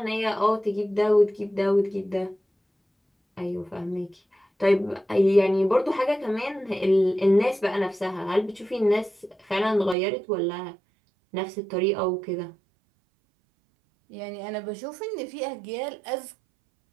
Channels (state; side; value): drops out; left; at 10.0 s